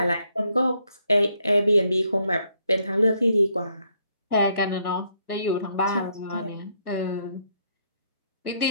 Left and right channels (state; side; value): inverted; both; correlation -0.73